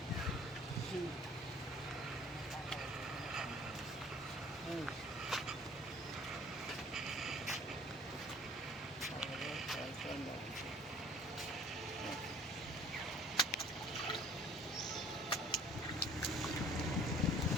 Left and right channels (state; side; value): normal; both; correlation 0.51